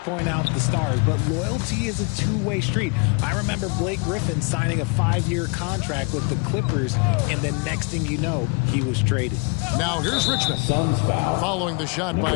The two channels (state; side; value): quieter; right; 32.9 dB